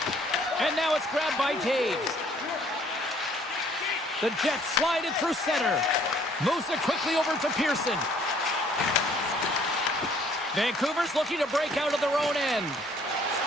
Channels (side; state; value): both; normal; correlation 0.61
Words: And now it's grabbed by Taves. The Jets slide it through center. Moves it quickly over to Pearson. Vancouver's looking to break out of their own end.